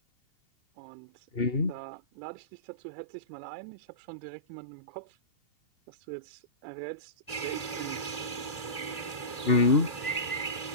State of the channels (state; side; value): late; right; 2.8 ms